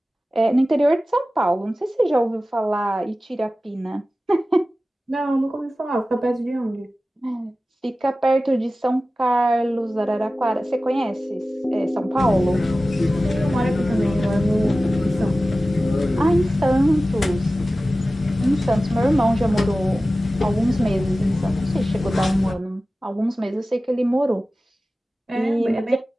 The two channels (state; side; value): normal; both; correlation 0.96